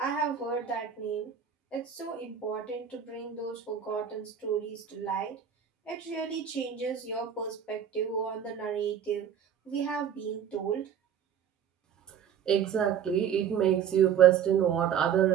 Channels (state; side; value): quieter; left; 8.4 dB